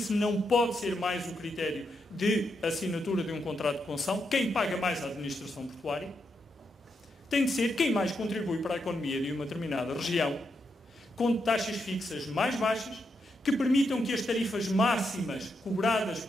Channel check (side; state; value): both; normal; correlation 0.82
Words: não pode ser mais o critério de assinatura de um contrato de concessão. Quem paga mais a administração portuária tem de ser quem mais contribui para a economia de uma determinada região, com taxas fixas mais baixas, que permitam que as tarifas máximas cobradas